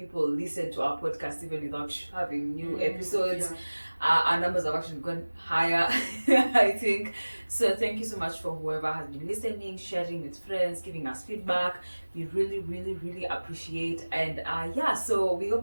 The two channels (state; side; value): inverted; both; correlation -1.00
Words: listen to our podcast even without having new episodes. Our numbers have actually gone higher, I think. So thank you so much for whoever has been listening, sharing with friends, giving us feedback. We really, really, really appreciate. And so we